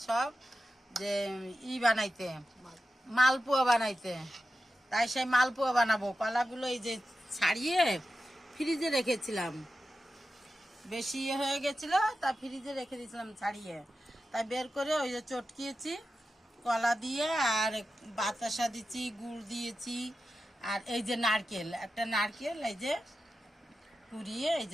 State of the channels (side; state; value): both; normal; correlation 0.92